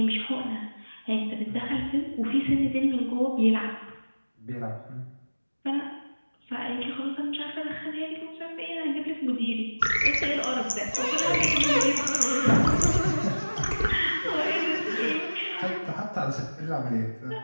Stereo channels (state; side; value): inverted; both; correlation -1.00